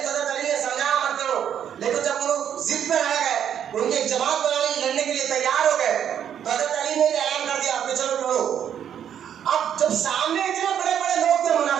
تو حضرت علی نے سمجھایا مت کرو، لیکن جب وہ لوگ ضد پہ رہ گئے، ان کی ایک جماعت بنانے لڑنے کے لیے تیار ہو گئے تو حضرت علی نے اعلان کر دیا کہ چلو لڑو۔ اب جب سامنے اتنے بڑے بڑے لوگ تھے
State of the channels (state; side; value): quieter; left; 9.2 dB